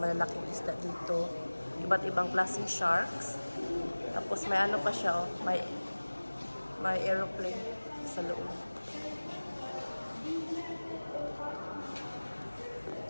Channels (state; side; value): inverted; both; correlation -1.00